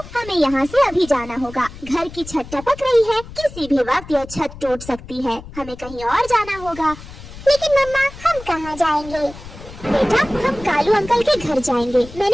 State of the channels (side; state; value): left; noise; rumble, 15 dB below the sound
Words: हमें यहाँ से अभी जाना होगा। घर की छत टपक रही है, किसी भी वक्त यह छत टूट सकती है। हमें कहीं और जाना होगा। लेकिन मम्मा, हम कहाँ जाएंगे? बेटा हम कालू अंकल के घर जाएंगे।